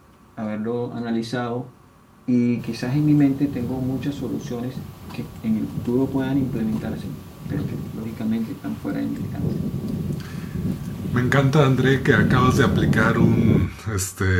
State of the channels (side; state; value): both; identical; correlation 1.00